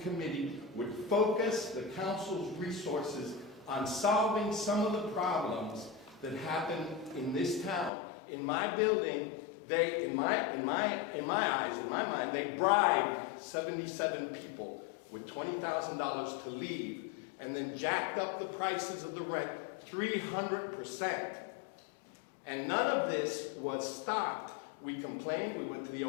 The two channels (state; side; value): drops out; right; at 7.9 s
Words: committee would focus the council's resources on solving some of the problems that happen in this town. In my building, in my mind, they bribed 77 people with $20,000 to leave, and then jacked up the prices of the rent 300%. And none of this was stopped. We complained, we went to the